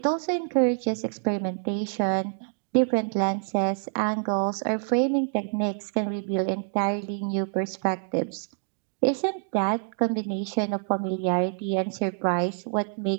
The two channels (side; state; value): left; silent; 58 dB below the other